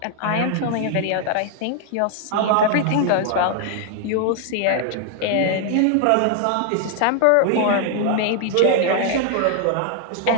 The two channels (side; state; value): both; different; correlation 0.00